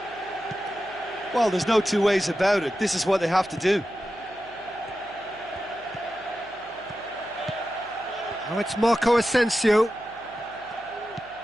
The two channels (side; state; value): left; noise; hum, 27 dB below the sound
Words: Well, there's no two ways about it. This is what they have to do. Now it's Marco Asensio.